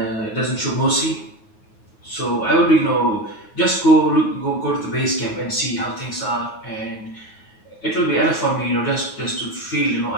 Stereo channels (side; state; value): right; late; 9.4 ms